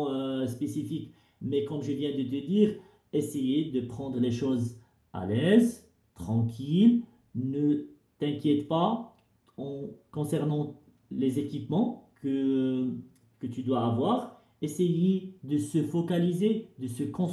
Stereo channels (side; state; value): both; identical; correlation 1.00